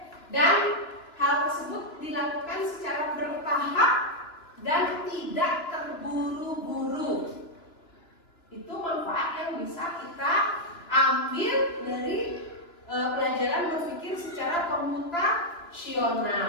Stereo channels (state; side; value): late; right; 2.9 ms